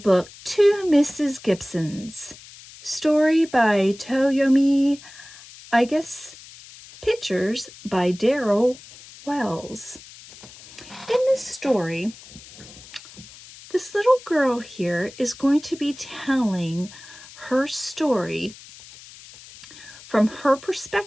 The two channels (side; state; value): left; noise; hiss, 19 dB below the sound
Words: To Mrs. Gibsons, story by Toyomi, I guess, pictures by Daryl Wells. In this story, this little girl here is going to be telling her story from her